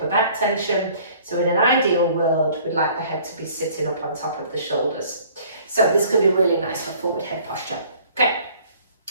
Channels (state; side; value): inverted; both; correlation -0.54